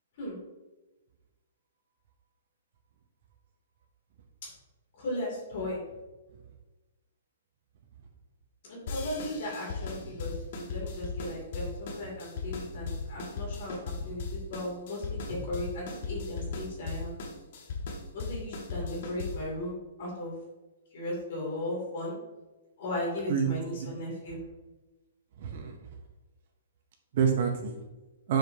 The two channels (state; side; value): inverted; both; correlation -0.42